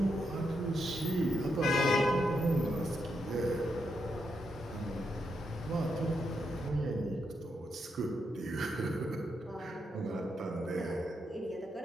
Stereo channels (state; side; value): normal; both; correlation 0.82